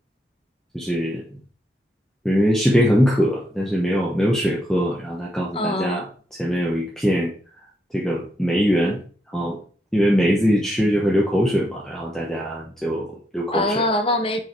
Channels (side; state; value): both; normal; correlation 0.78